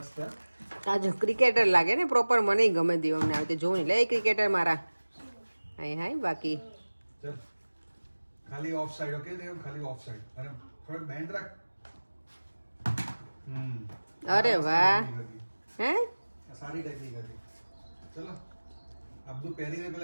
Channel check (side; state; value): both; inverted; correlation -1.00